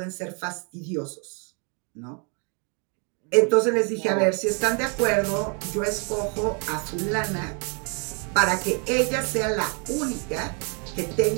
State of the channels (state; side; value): quieter; left; 36.3 dB